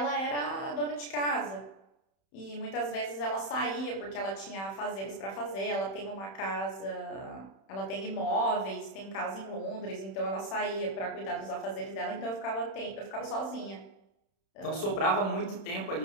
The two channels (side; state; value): right; late; 31 ms